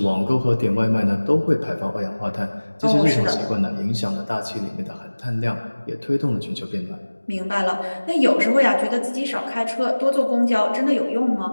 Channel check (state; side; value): inverted; both; correlation -1.00